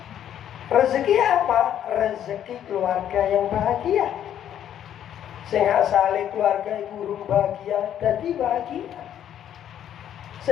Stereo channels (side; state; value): right; quieter; 10.3 dB